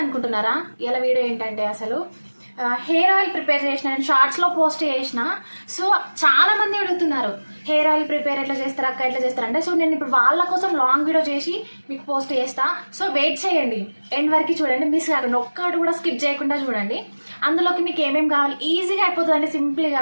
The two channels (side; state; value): both; inverted; correlation -1.00